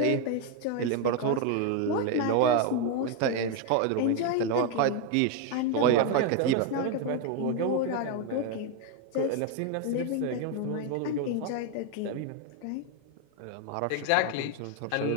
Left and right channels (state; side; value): different; both; correlation 0.01